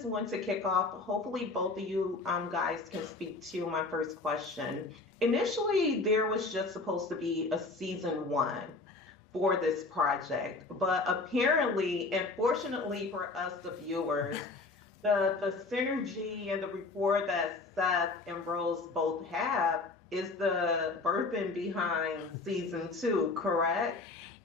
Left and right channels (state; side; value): quieter; right; 3.6 dB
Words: want to kick off. Hopefully, both of you guys can speak to my first question. Initially, there was just supposed to be a season one for this project, but apparently, and fortunately for us, the viewers, the synergy and the rapport that Seth and Rose both have is the birthing behind season two, correct?